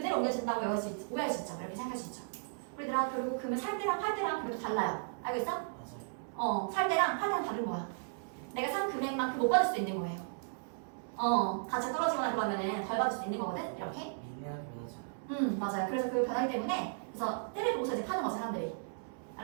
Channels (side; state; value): left; silent; 54 dB below the other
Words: 옮겨진다고 오해할 수 있죠. 이렇게 생각할 수 있죠. 우리들아 결국 금을 살 때랑 팔 때랑 그래도 달라요. 알고 있어? 살 때랑 팔 때랑 다른 거야. 내가 산 금액만큼 못 받을 수도 있는 거예요. 가치가 떨어지거나 그러면은 덜 받을 수 있는 거거든. 이렇게. 맞아요. 그래서 그 변하기 때문에 그래서 때를 보고서 이제 파는 거죠 사람들이.